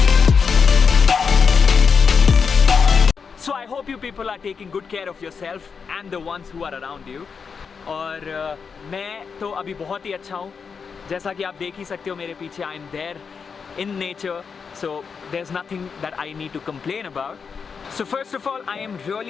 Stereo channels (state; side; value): quieter; right; 5.8 dB